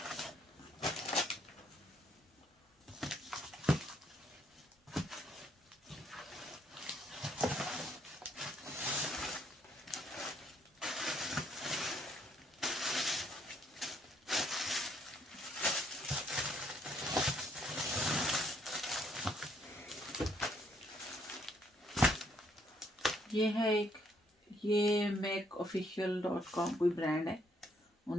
ये है एक, ये makeofficial.com कोई ब्रांड है,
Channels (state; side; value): normal; both; correlation 0.69